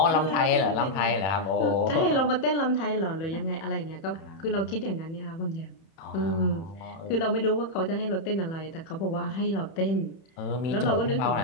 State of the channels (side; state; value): right; late; 31 ms